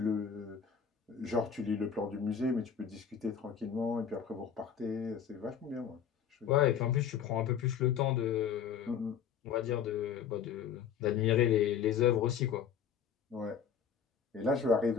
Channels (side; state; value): right; quieter; 7.7 dB